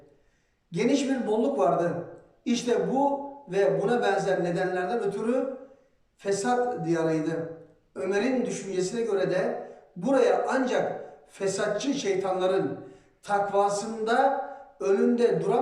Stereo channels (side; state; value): both; identical; correlation 1.00